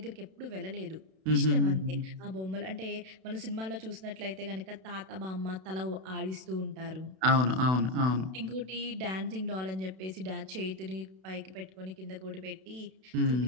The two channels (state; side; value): late; left; 32 ms